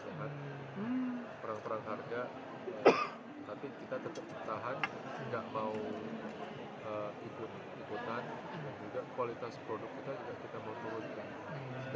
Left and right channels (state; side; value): identical; both; correlation 1.00